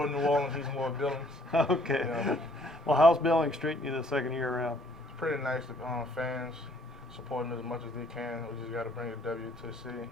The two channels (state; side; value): normal; both; correlation 0.62